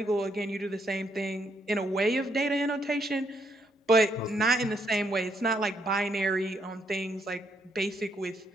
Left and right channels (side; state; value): both; normal; correlation 0.74